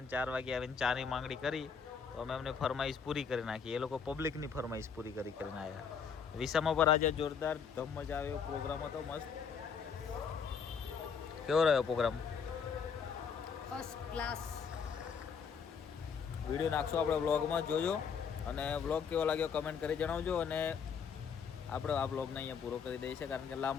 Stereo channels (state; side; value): quieter; right; 6.4 dB